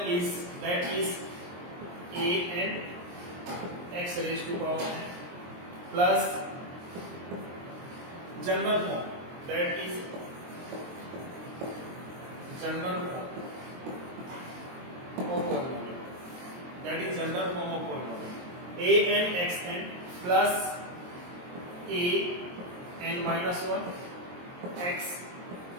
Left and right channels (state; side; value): late; left; 23 ms